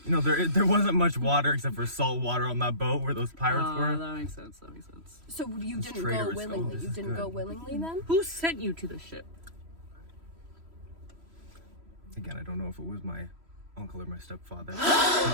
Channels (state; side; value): late; left; 3.1 ms